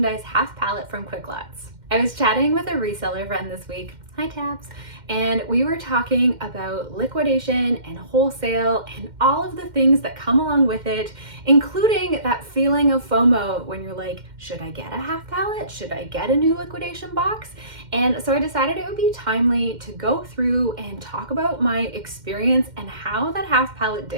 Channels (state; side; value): late; left; 2.1 ms